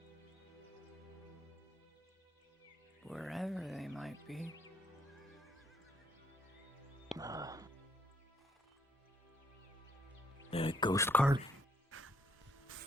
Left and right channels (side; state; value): both; normal; correlation 0.72